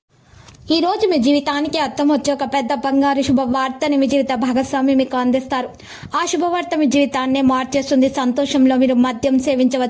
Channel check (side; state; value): both; identical; correlation 1.00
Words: ఈ రోజు మీ జీవితానికి అర్థం వచ్చే ఒక పెద్ద బంగారు శుభవార్తని మీ జీవిత భాగస్వామి మీకు అందిస్తారు. ఆ శుభవార్త మీ జీవితాన్ని మార్చేస్తుంది. సంతోషంలో మీరు మద్యం